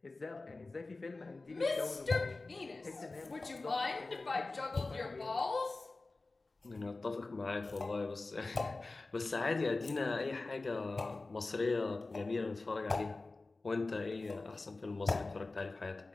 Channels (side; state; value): right; quieter; 3.4 dB